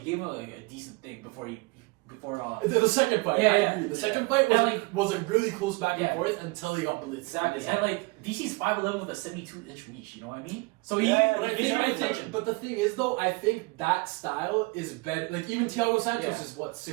him like a decent thing before he before. The second fight, I agree. The second fight was like really close back and Yeah. forth until he got blitzed. Exactly, and like DC's 5'11" with a 72-inch reach. You know what I mean? So Yeah, but the thing is though, I think that style is better. Like even Thiago Santos is what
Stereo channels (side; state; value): left; quieter; 26.4 dB